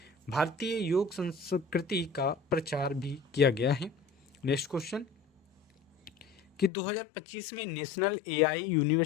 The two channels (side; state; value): right; drops out; at 6.7 s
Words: भारतीय योग संस्कृति का प्रचार भी किया गया है। नेक्स्ट क्वेश्चन कि 2025 में नेशनल एआई